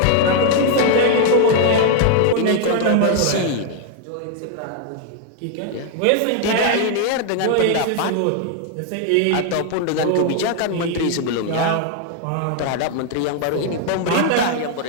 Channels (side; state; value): both; different; correlation 0.00